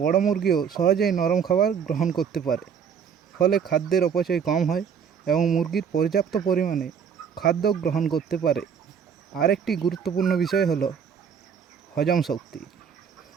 বড় মুরগিও সহজেই নরম খাবার গ্রহণ করতে পারে। ফলে খাদ্যের অপচয় কম হয় এবং মুরগির পর্যাপ্ত পরিমাণে খাদ্য গ্রহণ করতে পারে। আরেকটি গুরুত্বপূর্ণ বিষয় হলো হজম শক্তি।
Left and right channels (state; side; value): quieter; left; 7.2 dB